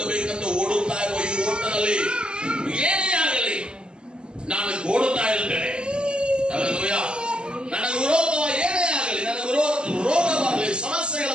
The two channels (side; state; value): left; late; 0.049 ms